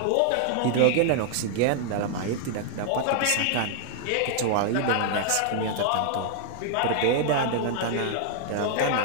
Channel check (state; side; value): different; both; correlation -0.01